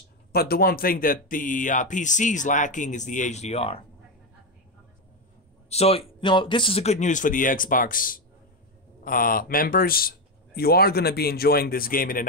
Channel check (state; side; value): normal; both; correlation 0.09